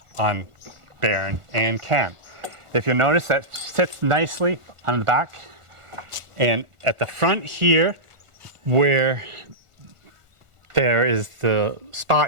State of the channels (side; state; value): left; late; 1.4 ms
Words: on Baron and Ken. If you'll notice, that sits nicely on the back, and at the front here where there is the